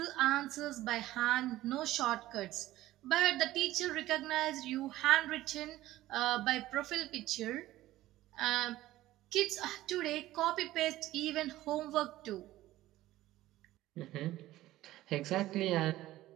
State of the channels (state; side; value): quieter; left; 15.7 dB